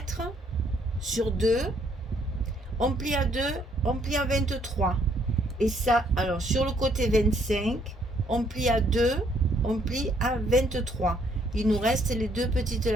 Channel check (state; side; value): normal; both; correlation 0.68